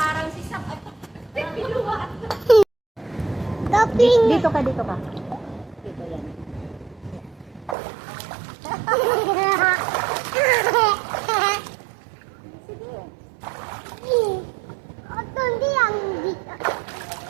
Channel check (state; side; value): drops out; left; at 7.8 s